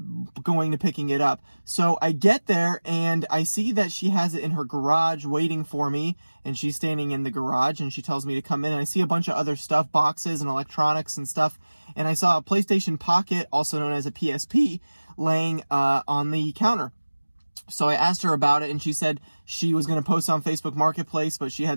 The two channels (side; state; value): both; inverted; correlation -1.00